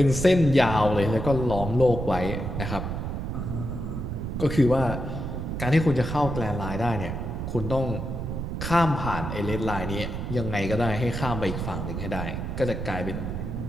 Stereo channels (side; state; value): right; noise; rumble, 4 dB below the sound